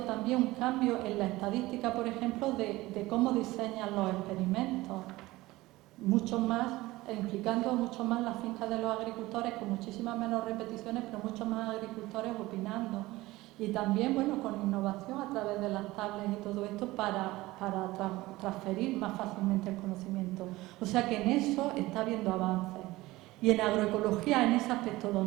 un cambio en la estadística, por ejemplo, de cómo diseñan los experimentos. Mucho más, implicando mucho más las fincas de los agricultores, con muchísimas menos repeticiones, pero muchos más agricultores opinando. Y también, con innovación a través de las tablets y todo esto para transferir más fácilmente el conocimiento. O sea que en eso está habiendo avances. Y en agroecología, en ese aspecto,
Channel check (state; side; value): quieter; left; 19.0 dB